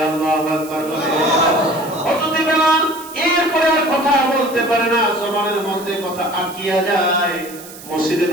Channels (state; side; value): noise; right; hiss, 17 dB below the sound